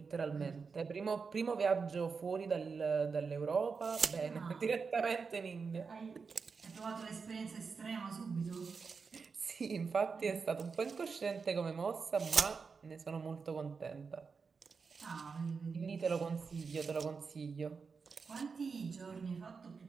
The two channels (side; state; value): left; quieter; 5.2 dB